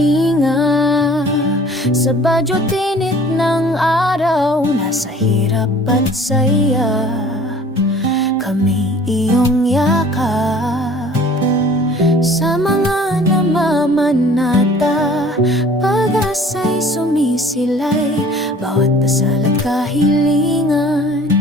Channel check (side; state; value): both; normal; correlation 0.50